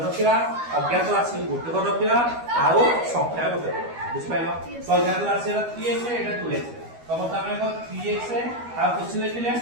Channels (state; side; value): late; left; 12 ms